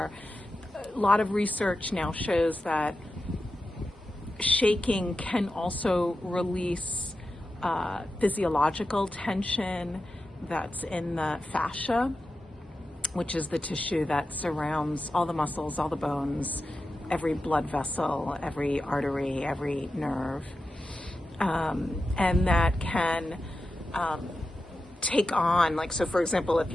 A lot of research now shows that shaking can also release physiological tension that's in the fascia, which is the tissue that surrounds all the muscles, all the bones, every blood vessel, every artery, every nerve. And that can take on, like, so for example, if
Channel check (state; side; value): normal; both; correlation 0.91